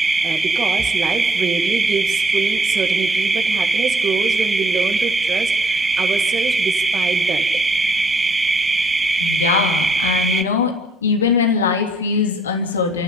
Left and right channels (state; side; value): normal; both; correlation 0.64